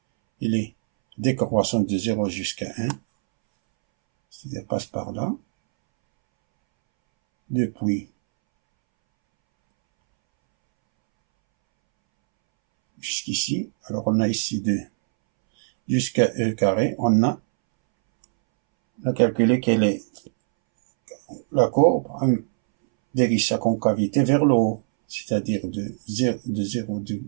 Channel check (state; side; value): silent; left; 64 dB below the other